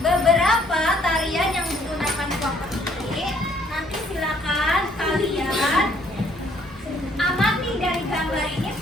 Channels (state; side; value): normal; both; correlation 0.65